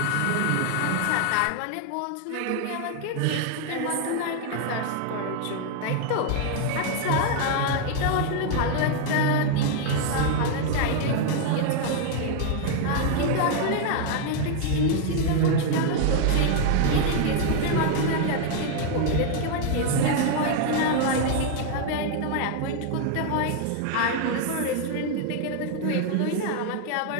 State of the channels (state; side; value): different; both; correlation 0.00